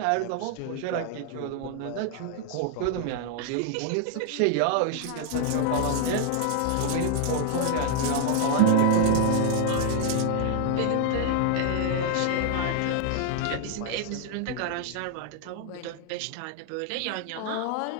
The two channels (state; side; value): different; both; correlation 0.00